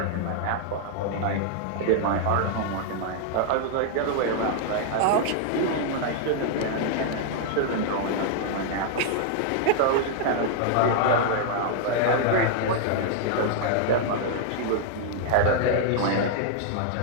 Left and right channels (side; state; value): both; different; correlation 0.00